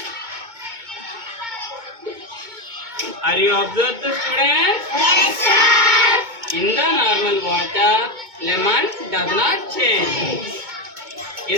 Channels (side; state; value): left; late; 2.2 ms